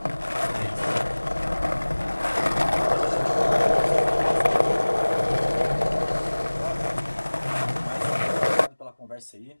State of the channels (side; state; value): both; inverted; correlation -1.00